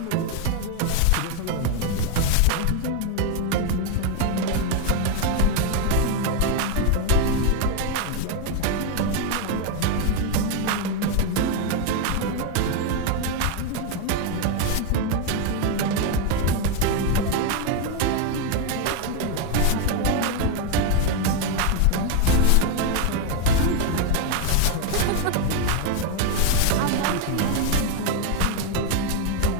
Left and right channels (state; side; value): different; both; correlation 0.01